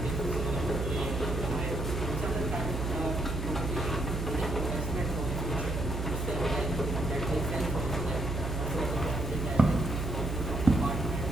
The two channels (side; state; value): right; noise; hum, 3 dB below the sound